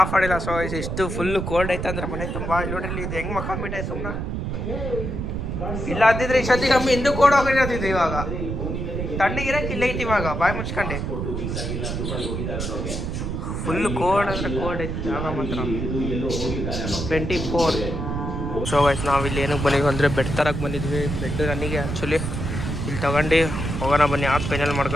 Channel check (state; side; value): noise; right; rumble, 3 dB below the sound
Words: ಮಾಡಿಲ್ಲ. ಸೊ ಇಷ್ಟು ಫುಲ್ಲು ಕೋಲ್ಡ್ ಐತೆ ಅಂದ್ರೆ ಮನೆ ತುಂಬ. ಇಲ್ಲಿ ನೋಡ್ರಿ ಇದು ಹೆಂಗೆ ಮಕ್ಕೊಂಬಿಟ್ಟೆ ಸುಮ್ಮನೆ. ಇಲ್ಲ ಅಂದಿದ್ರೆ ಇಷ್ಟೊತ್ತಿ ಕಮ್ಮಿ ಹಿಂದೂ ಕೋಡ್ ಹೋಗಿರೋದಿದ್ದು. ಇವಾಗ ತಣ್ಣಗಿರಕ್ಕೆ ಇಲ್ಲ ಐತಿ ಇವಾಗ. ಬಾಯಿ ಮುಚ್ಕೊಂಡೆ ಫುಲ್ ಕೋಲ್ಡ್ ಅಂದ್ರೆ ಕೋಲ್ಡ್ ಐತಿ ಜಾಗ ಮಾತ್ರ 24. ಸೊ ಗೈಸ್ ನಾವಿಲ್ಲಿ ಏನಕ್ಕೆ ಬಂದಿದ್ವಿ ಅಂದರೆ ಬೆಡ್ ತರಕ್ಕೆ ಬಂದಿದ್ವಿ. ಬೆಡ್ ನನಗೆ ಆ್ಯಕ್ಚುಲಿ ಇಲ್ಲಿ ತಗೊಂಡು ಹೋಗೋಣ ಬನ್ನಿ, ಆಫ್ ಫೈನಲ್